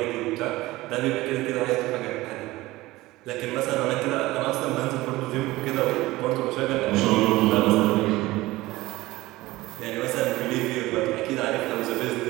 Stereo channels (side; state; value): left; quieter; 18.7 dB